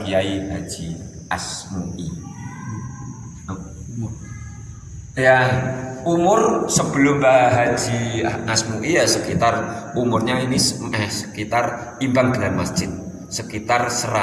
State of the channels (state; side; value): identical; both; correlation 1.00